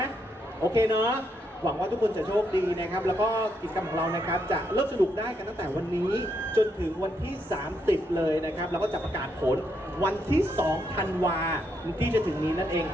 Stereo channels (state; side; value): normal; both; correlation 0.78